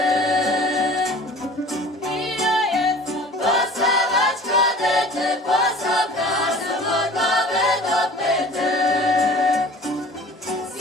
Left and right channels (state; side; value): normal; both; correlation 0.44